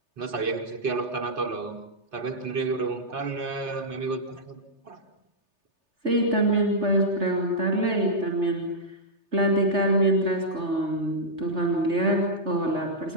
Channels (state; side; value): late; left; 3.3 ms